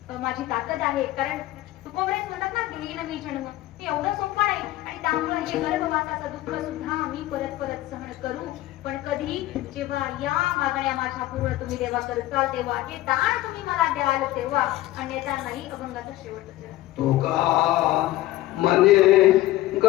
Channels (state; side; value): quieter; right; 16.1 dB